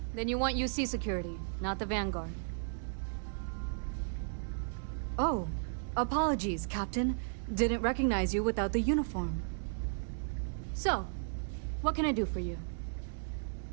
Then you want UC security, not the Vanguard. Oh, apologies, Captain. Didn't recognize you without the uniform. So, what can I do for you?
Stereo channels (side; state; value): left; silent; digital silence